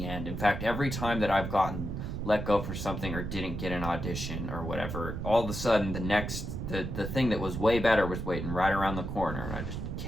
end. In fact, every time that I've gotten let go for something or didn't get an audition or whatever, all of a sudden the thing that was way better was waiting right around the corner, and I just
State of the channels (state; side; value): noise; right; rumble, 5 dB below the sound